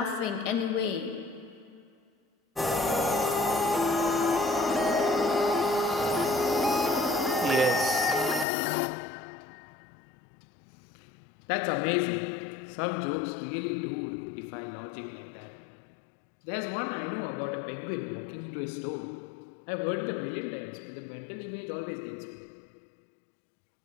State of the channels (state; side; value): drops out; right; at 8.5 s